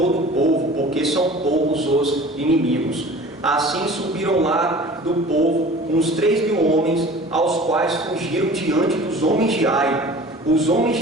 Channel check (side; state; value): both; normal; correlation 0.43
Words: o povo, porque são poucos os inimigos. Assim subiram lá do povo uns 3 mil homens, aos quais fugiram diante dos homens de Ai. Os homens